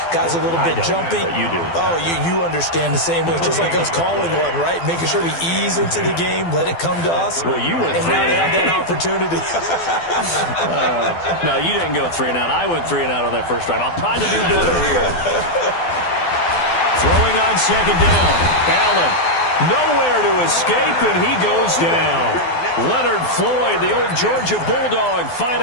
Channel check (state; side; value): late; right; 12 ms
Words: Guys are a little bit jumpy. But you do. Oh, you understand the same way. It's just like us calling one, right? Making sure we ease into the game, let it come to us. Well, you went and now they have that opportunity. No, you didn't go 3 and out. I went 3 and out on that first drive. I'll try to do better here. Throwing on second down. Allen. Nowhere to escape, and he goes down. Leonard Floyd, the old Georgia Bulldog,